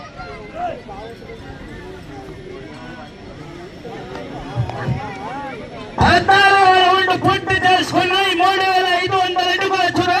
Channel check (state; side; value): identical; both; correlation 1.00